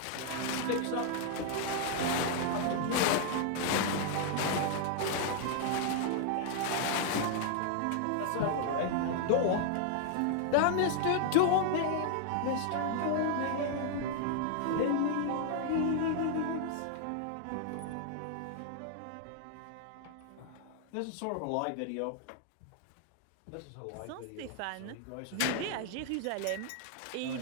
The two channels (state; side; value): different; both; correlation 0.00